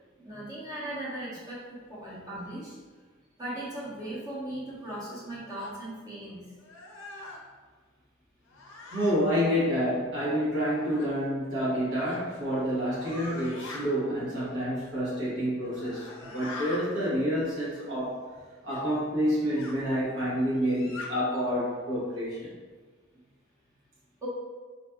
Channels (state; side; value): normal; both; correlation 0.49